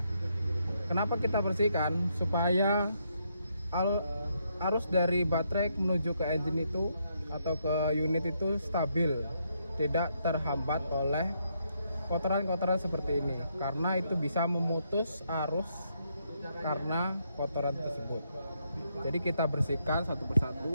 Kenapa kita bersihkan? Supaya arus dari baterai menuju ke engine itu atau ke unit itu stabil, tidak terhambat oleh kotoran-kotoran seperti ini, karena itu bisa memutus arus karena kotoran tersebut. Jadi kita bersihkan satu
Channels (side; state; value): both; inverted; correlation -0.77